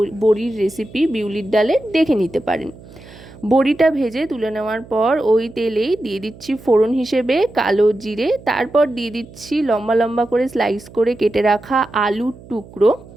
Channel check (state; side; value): noise; right; hum, 20 dB below the sound